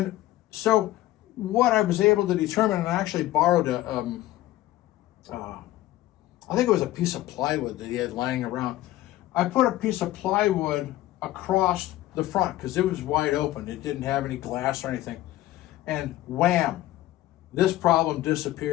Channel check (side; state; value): right; quieter; 15.6 dB